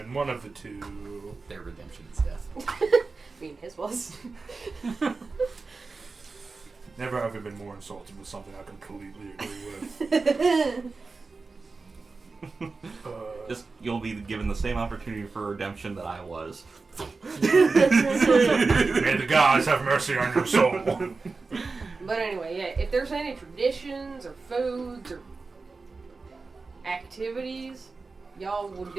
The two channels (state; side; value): quieter; left; 4.1 dB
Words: One of the two. Their redemption is death. I mean, his was. Never have I been more insulted with something I completely agree with. Just you'll be given the same opportunity for redemption that I was. May the gods have mercy on your soul. But anyway, yeah, if there's any traditions or foods or activities y'all will